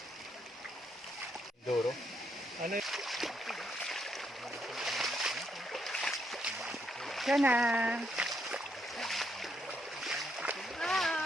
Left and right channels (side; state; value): both; normal; correlation 0.76